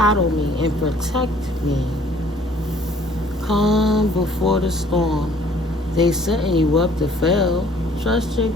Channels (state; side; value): normal; both; correlation 0.57